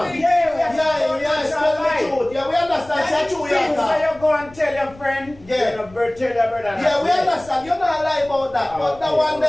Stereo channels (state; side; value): noise; left; rumble, 23 dB below the sound